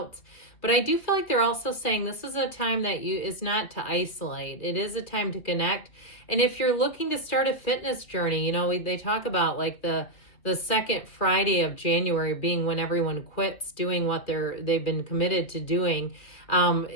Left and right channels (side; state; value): right; late; 2.4 ms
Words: But I do feel like they're also saying this is a time that is not to isolate. It is a time to connect. And if you're looking to start a fitness journey, they talk about like the second Friday of January being when everyone quits doing what they've been committed to doing